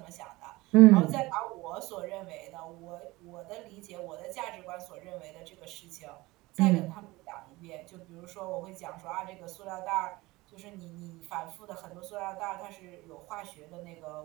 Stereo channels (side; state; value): left; quieter; 20.9 dB